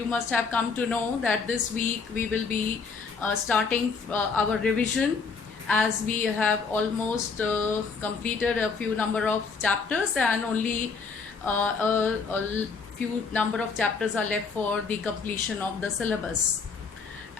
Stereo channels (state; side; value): quieter; right; 5.0 dB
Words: must have come to know that this week we will be starting our revision, as we have almost completed a few number of chapters and only a few number of chapters are left for the completion of the syllabus.